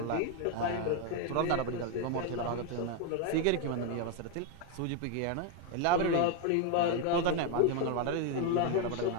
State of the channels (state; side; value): different; both; correlation 0.01